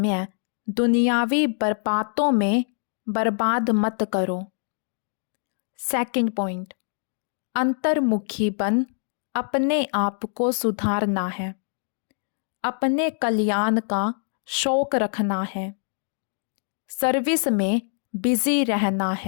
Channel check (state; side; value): silent; right; digital silence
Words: दुनियावी बर्बादों में बर्बाद मत करो। सेकंड पॉइंट, अंतर्मुखी बन अपने आप को सुधारना है। अपने कल्याण का शौक रखना है। सर्विस में बिजी रहना